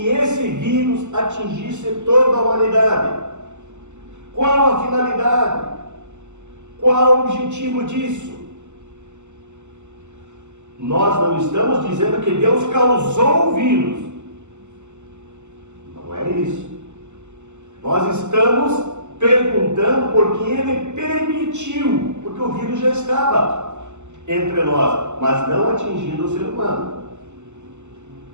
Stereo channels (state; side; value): late; left; 0.83 ms